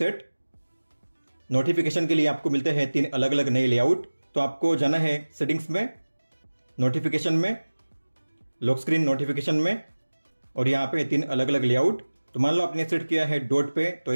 नोटिफिकेशन के लिए आपको मिलते हैं 3 अलग अलग नए लेआउट। तो आपको जाना है सेटिंग्स में, नोटिफिकेशन में, लॉक स्क्रीन नोटिफिकेशन में और यहाँ पे 3 अलग अलग लेआउट। तो मान लो आपने सेट किया है डॉट पे, तो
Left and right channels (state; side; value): inverted; both; correlation -1.00